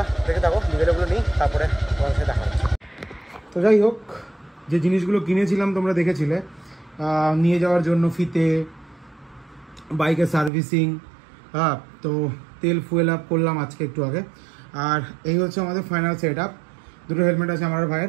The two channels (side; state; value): left; drops out; at 10.5 s